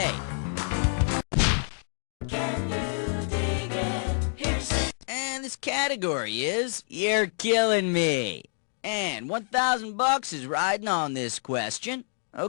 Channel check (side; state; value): right; silent; 60 dB below the other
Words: Can you dig it? Here's it. And this category is You're Killing Me. And $1,000 is riding on this question.